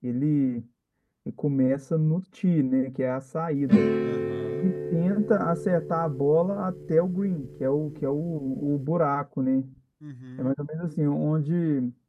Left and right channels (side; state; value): both; identical; correlation 1.00